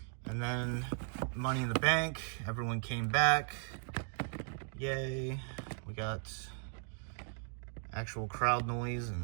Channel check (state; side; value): silent; left; 53 dB below the other